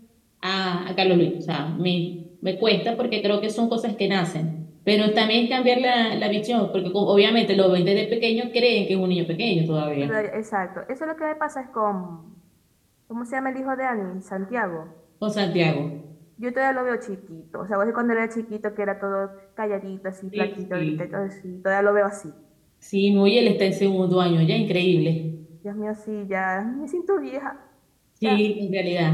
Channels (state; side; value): identical; both; correlation 1.00